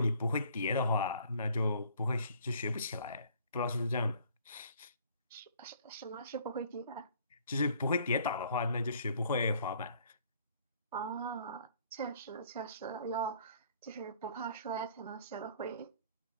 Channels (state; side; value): inverted; both; correlation -0.58